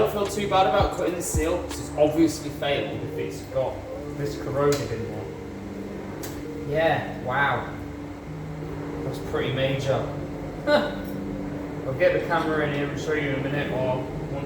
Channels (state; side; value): identical; both; correlation 1.00